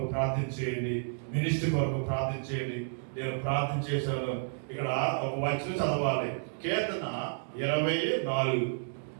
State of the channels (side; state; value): left; silent; digital silence